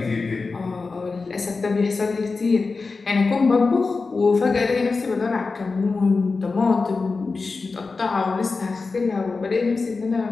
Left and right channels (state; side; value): quieter; right; 4.2 dB